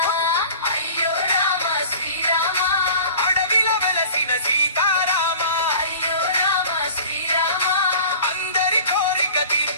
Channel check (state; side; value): inverted; both; correlation -0.42